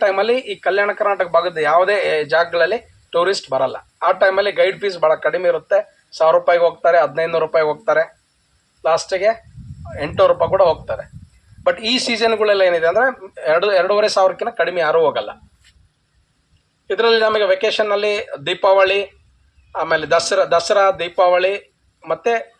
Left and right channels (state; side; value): identical; both; correlation 1.00